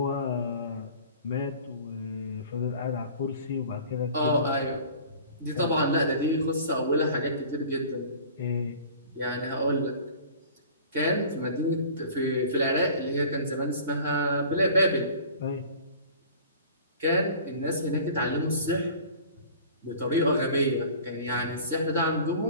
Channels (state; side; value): inverted; both; correlation -0.44